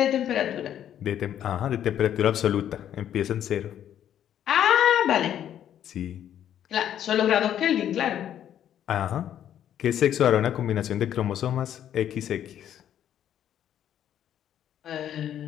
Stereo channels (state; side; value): quieter; right; 10.4 dB